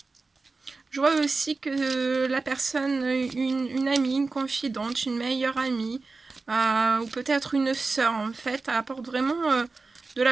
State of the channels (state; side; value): quieter; left; 3.9 dB